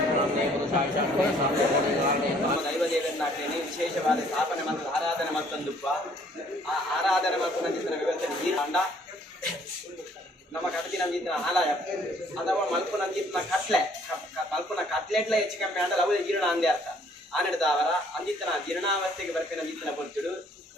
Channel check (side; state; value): both; normal; correlation 0.61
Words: ಪುರುಷಾಯ ಶಾಂತೇ ಶಾಂತೇ ದೈವದೇವರನ್ನಾಗ್ತೇನೆ ವಿಶೇಷವಾದ ಸ್ಥಾಪನೆ ಮತ್ತು ಆರಾಧನೆ ಮತ್ತೊಂದುಪ್ಪ ಆ ಆರಾಧನೆ ಮತ್ತು ನಂಜಿನ ವ್ಯವಸ್ಥೆ ಈ ಅಂಡ ನಮ್ಮ ಕಡತಿ ನಂಜಿನ ಆಲಯ ಅಥವಾ ಮಲ್ಪು ನಂಜಿನ ಕಟ್ಲೆ ಮಲ್ಪುನ ಕಟ್ಲೆಟ್ಲ ಹೆಚ್ಚು ಕಮ್ಮಿ ಅಂದ್ರೆ ಅವು ಜೀರ್ಣ ಅಂದೇ ಅರ್ಥ ಆನೆಡ್ದವರ ಅಂದಿತ್ತನ ಜೀರ್ಣಾವಸ್ಥೆಗೆ ಬರ್ಪಿನ ಅಂದಿತ್ತನ ಪೊರ್ತುಡು